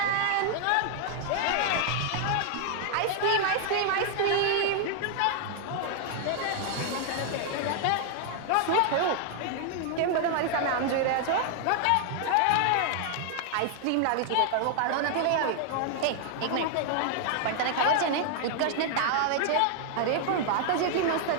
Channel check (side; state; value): both; different; correlation 0.00